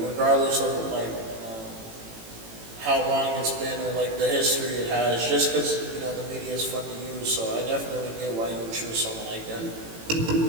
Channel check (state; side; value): late; left; 18 ms